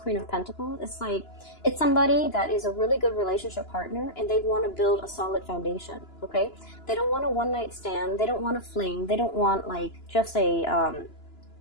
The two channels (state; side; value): late; right; 2.9 ms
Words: of Pentacles, it's like, it's somebody that is a really good relationship partner, and they want to build a solid foundation, okay? They don't want a one-night stand. They don't want a fling. They don't want, like, just a